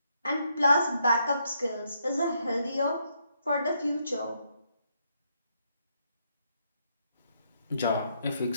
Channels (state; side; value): inverted; both; correlation -0.76